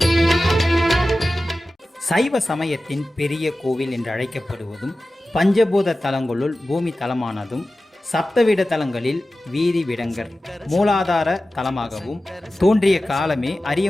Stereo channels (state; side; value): normal; both; correlation 0.95